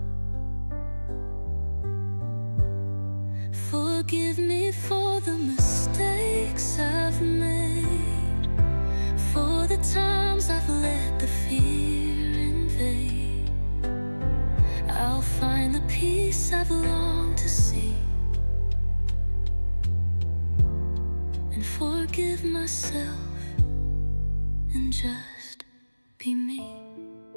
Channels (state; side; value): inverted; both; correlation -1.00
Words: Forgive me for the mistakes I've made, for the times I've let the fear invade. I'll find the peace I've longed to see, and forgive myself and just be me.